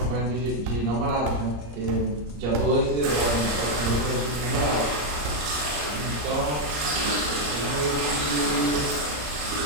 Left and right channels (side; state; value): left; late; 34 ms